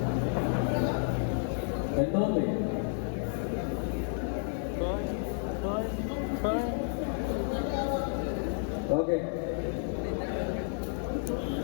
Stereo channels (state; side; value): silent; right; 56 dB below the other